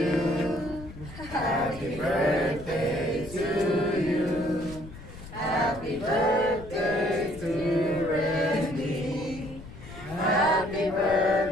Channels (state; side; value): noise; left; rumble, 15 dB below the sound